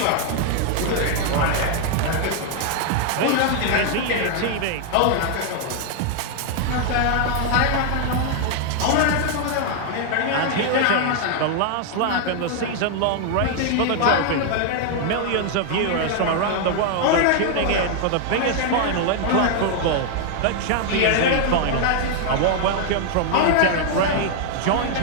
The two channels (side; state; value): both; different; correlation 0.00